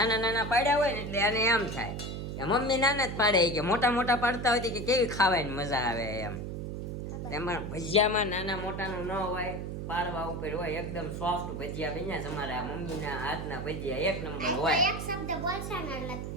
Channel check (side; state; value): right; noise; hum, 5 dB below the sound